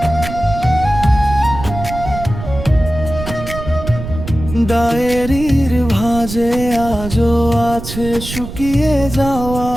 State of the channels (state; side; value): noise; right; rumble, 9 dB below the sound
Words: ডায়েরির ভাঁজে আজও আছে শুকিয়ে যাওয়া